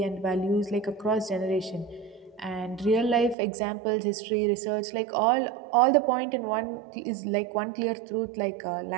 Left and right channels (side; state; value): left; drops out; at 3.4 s